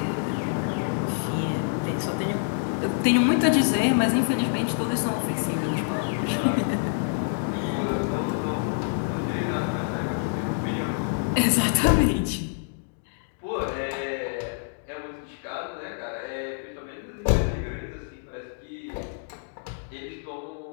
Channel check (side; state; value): right; silent; digital silence